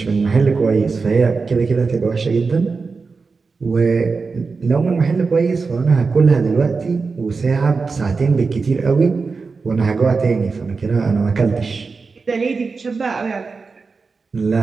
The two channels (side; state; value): left; quieter; 4.5 dB